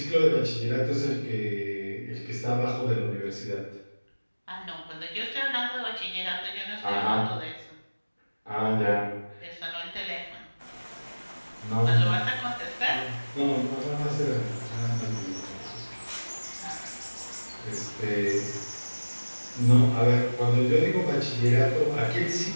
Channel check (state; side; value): inverted; both; correlation -1.00